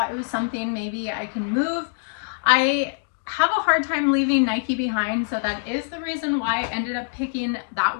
it was something maybe I can move. I have a hard time leaving Nike behind, so that is the reason why I ended up picking that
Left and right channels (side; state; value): right; silent; digital silence